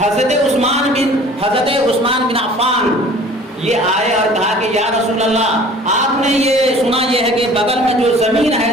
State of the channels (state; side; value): normal; both; correlation 0.48